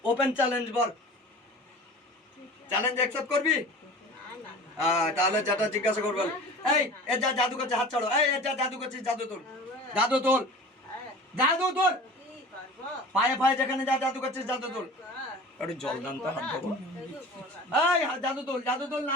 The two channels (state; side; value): normal; both; correlation 0.39